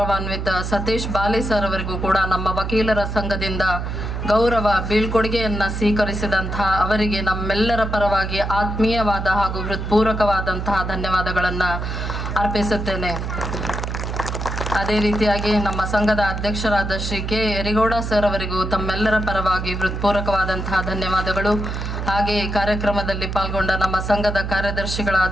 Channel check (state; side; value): noise; right; hum, 4 dB below the sound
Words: ಸತೀಶ್ ಬಾಲಿ ಸರ್ ಅವರಿಗೂ ಕೂಡ ನಮ್ಮ ವಕೀಲರ ಸಂಘದಿಂದ ಗೌರವ ಬೀಳ್ಕೊಡುಗೆಯನ್ನು ಸ್ವೀಕರಿಸಿದಂತಹ ಅವರಿಗೆ ನಮ್ಮೆಲ್ಲರ ಪರವಾಗಿ ಆತ್ಮೀಯವಾದ ಹಾಗೂ ಹೃತ್ಪೂರ್ವಕವಾದಂತಹ ಧನ್ಯವಾದಗಳನ್ನು ಅರ್ಪಿಸುತ್ತೇನೆ. ಅದೇ ರೀತಿಯಾಗಿ ನಮ್ಮ ಸಂಘದ ಅಧ್ಯಕ್ಷರಾದ ಶ್ರೀ ಕೆ ಯರಿಗೌಡ ಸರ್ ಅವರಿಗೂ ತಮ್ಮೆಲ್ಲರ ಪರವಾಗಿ ಹೃತ್ಪೂರ್ವಕವಾದಂತಹ ಧನ್ಯವಾದಗಳು. ಹಾಗೆ ಕಾರ್ಯಕ್ರಮದಲ್ಲಿ ಪಾಲ್ಗೊಂಡ ನಮ್ಮ ಸಂಘದ